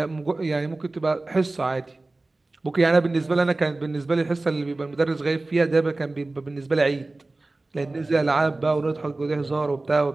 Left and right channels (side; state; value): left; quieter; 3.1 dB